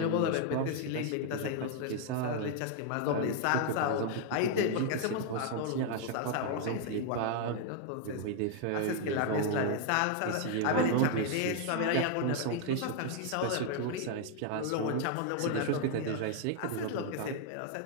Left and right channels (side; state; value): both; different; correlation 0.00